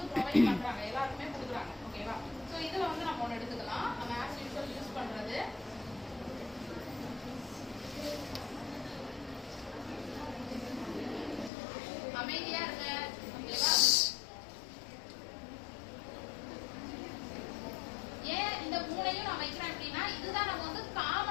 ப்ரொவைட் பண்றாங்க, எல்லாருக்குமே கொடுக்குறாங்க. ஓகேவா? சோ இதுல வந்து நம்ம ஒன்னு எடுத்துக்கலாம். நம்ம ஆஸ் யூசுவல் யூஸ் பண்றது அமைதியா இருங்க. ஓகேவா? ஏன் இந்த மூணையும் நான் வைக்கிறேன் அப்படின்னா இதுதான் நம்ம வந்து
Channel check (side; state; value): right; drops out; at 11.5 s